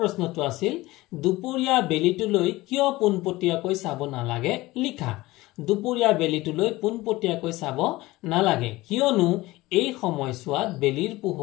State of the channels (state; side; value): quieter; right; 19.2 dB